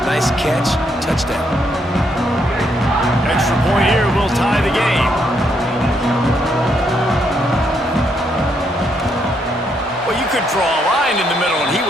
nice catch, touchdown. Extra point here will tie the game. Well, you could draw a line in the middle, and he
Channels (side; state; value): both; normal; correlation 0.75